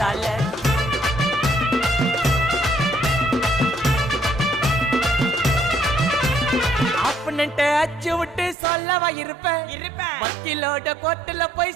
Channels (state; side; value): drops out; left; at 8.6 s